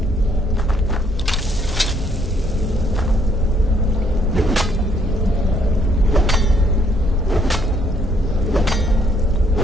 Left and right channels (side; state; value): both; normal; correlation 0.68